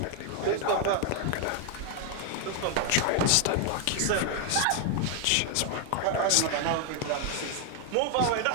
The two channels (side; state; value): both; different; correlation 0.00